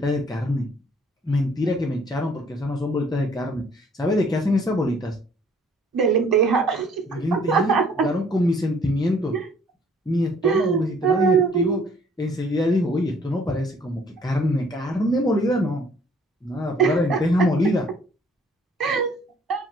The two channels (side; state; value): both; normal; correlation 0.59